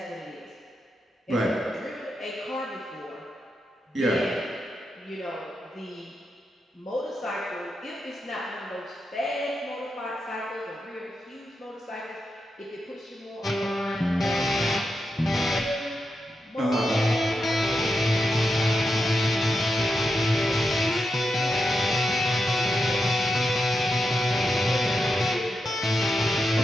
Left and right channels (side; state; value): both; normal; correlation 0.86